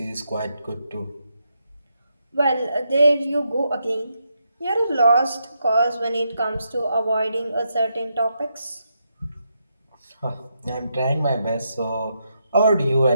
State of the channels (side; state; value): both; inverted; correlation -0.81